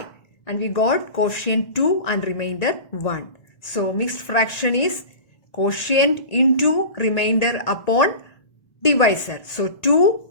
and we got quotient 2 and remainder 1. So mixed fraction is quotient into remainder upon divisor. So 2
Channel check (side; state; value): right; late; 1.8 ms